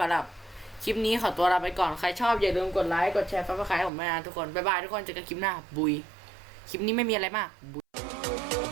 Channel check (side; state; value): left; drops out; at 3.9 s